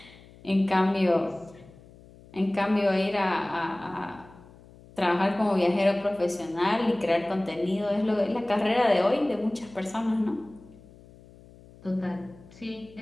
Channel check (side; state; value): left; noise; hum, 23 dB below the sound